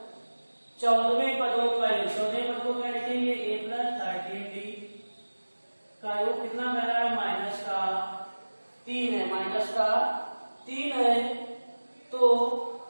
14वें पदों का योग, 14वें पद को क्या लिखेंगे? a+13d का योग कितना कह रहा है? -3 है, तो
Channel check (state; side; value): inverted; both; correlation -1.00